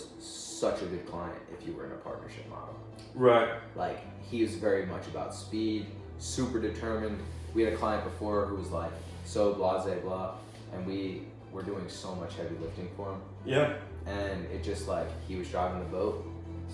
such a good client if you were in a partnership model. Right. Like, he was very much about speed, super determined. We had a client before who was like so blah, and we were doing so much heavy lifting for him. Yeah. And it just like, he was driving the boat.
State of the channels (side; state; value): both; identical; correlation 1.00